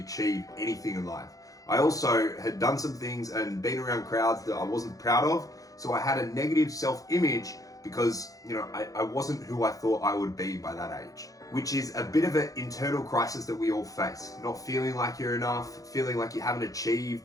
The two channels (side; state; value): right; late; 0.17 ms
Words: anything in life. I also had done some things and been around crowds that I wasn't proud of. So I had a negative self-image because, I wasn't who I thought I would be by that age, which is a bit of an internal crisis that we all face. Not feeling like you're enough, feeling like you haven't